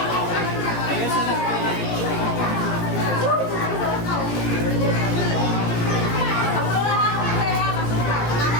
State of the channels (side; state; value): right; late; 17 ms